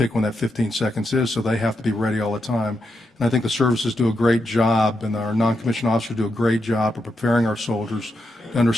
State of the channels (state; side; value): normal; both; correlation 0.84